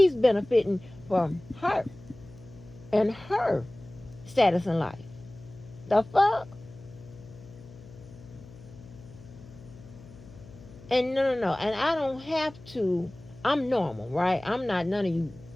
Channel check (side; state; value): left; noise; hum, 20 dB below the sound